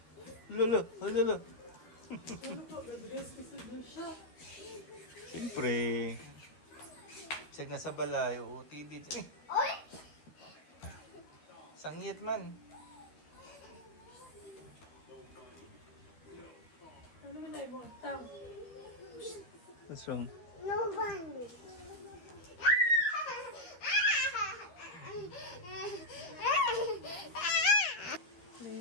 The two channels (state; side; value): late; right; 13 ms